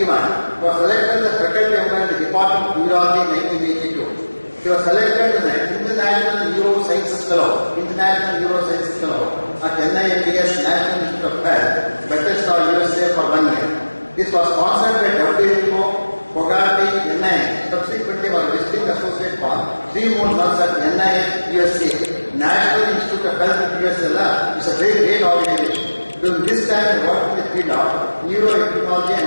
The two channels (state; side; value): inverted; both; correlation -1.00